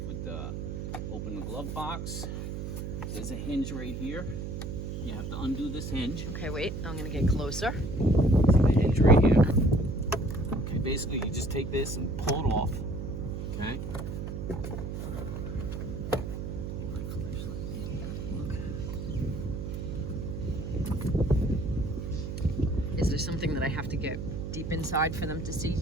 with open the glove box. There's a hinge right here. You have to undo this hinge. Okay, wait, I'm going to get closer. See the hinge right here. Okay, basically you just take this and pull it off. Okay. Is there something that I have to get deep inside for them to see,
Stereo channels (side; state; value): right; noise; hum, 5 dB below the sound